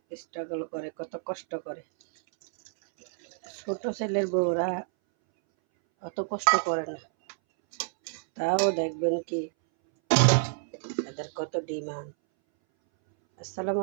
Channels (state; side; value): silent; left; 59 dB below the other